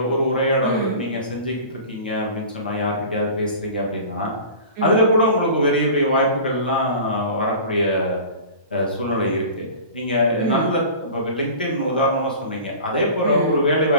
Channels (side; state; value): both; inverted; correlation -0.39